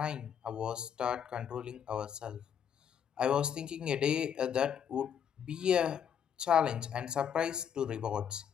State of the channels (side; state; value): right; quieter; 8.3 dB